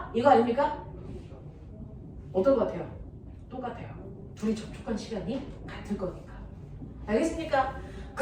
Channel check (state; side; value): identical; both; correlation 1.00